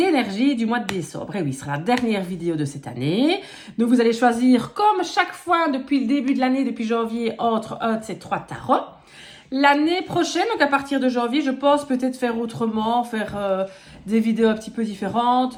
énergies du mois de décembre. Et oui, ce sera la dernière vidéo de cette année. Donc, vous allez choisir, comme chaque fois depuis le début de l'année, depuis janvier, entre un de ces 3 tarots. L'année prochaine, donc à partir de janvier, je pense peut-être faire autrement, faire des vidéos un petit peu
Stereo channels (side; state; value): both; identical; correlation 1.00